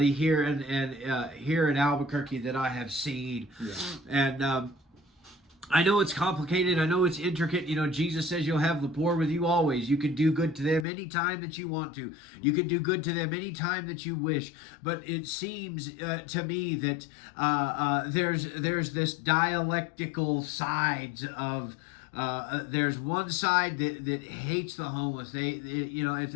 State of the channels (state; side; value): drops out; right; at 10.9 s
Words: here here in Albuquerque that I have seen, and. I know it's complicated. I know it's intricate. Jesus says you'll have the poor with you always. You can do good to them anytime that you want to. You can do good to them anytime that you wish. But it seems to me that there's this dialectical sides of. There's one side that hates the homeless. If